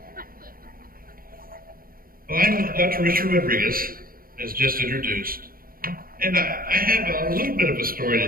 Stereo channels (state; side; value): late; left; 0.42 ms